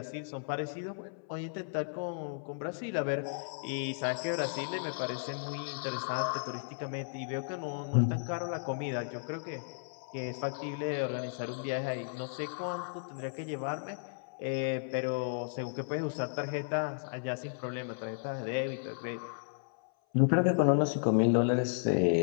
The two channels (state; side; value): silent; right; 55 dB below the other